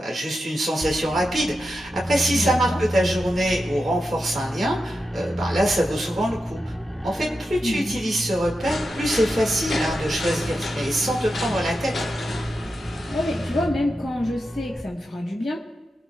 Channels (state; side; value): normal; both; correlation 0.89